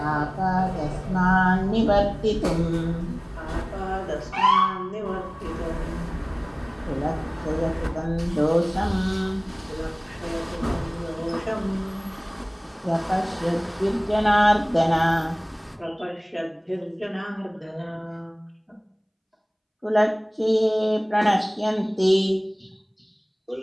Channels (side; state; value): both; identical; correlation 1.00